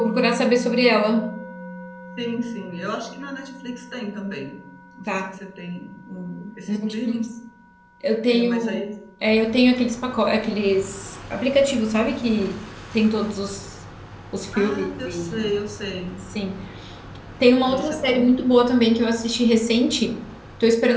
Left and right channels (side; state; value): both; identical; correlation 1.00